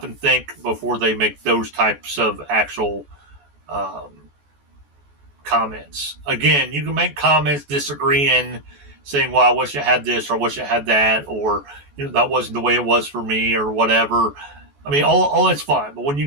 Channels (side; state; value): left; late; 14 ms